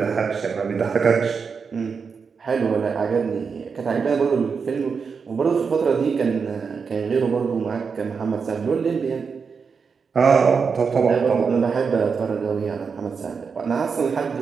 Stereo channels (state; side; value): quieter; left; 5.6 dB